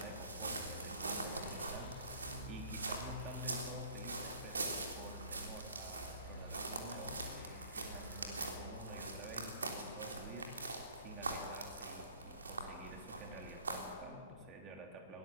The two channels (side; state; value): both; inverted; correlation -0.51